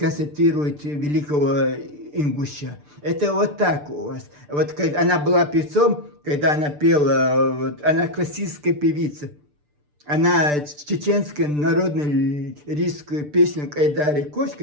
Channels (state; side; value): late; left; 6.8 ms